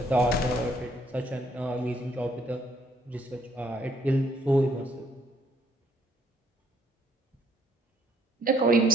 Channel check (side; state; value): both; normal; correlation 0.68